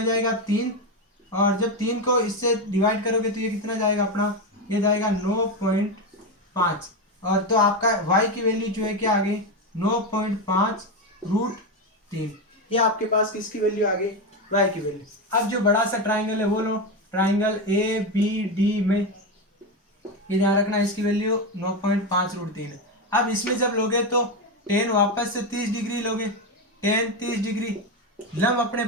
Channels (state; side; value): normal; both; correlation 0.13